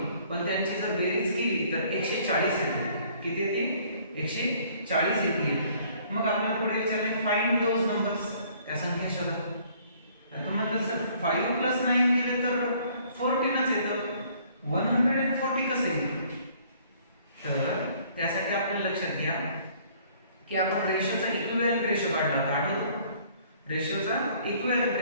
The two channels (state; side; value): inverted; both; correlation -0.59